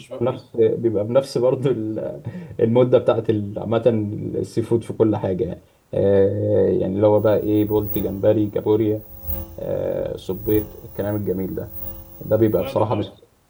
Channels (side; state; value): both; identical; correlation 1.00